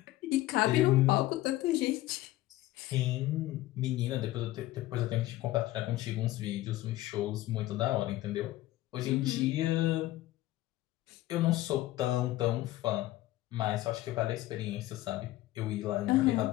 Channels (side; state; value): right; quieter; 16.3 dB